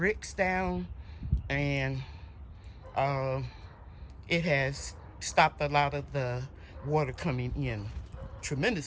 down. And it has stopped a lot of the water coming in.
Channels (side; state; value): both; identical; correlation 1.00